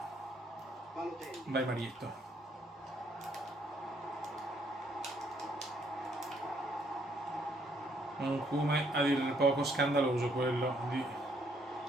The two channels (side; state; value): both; normal; correlation 0.69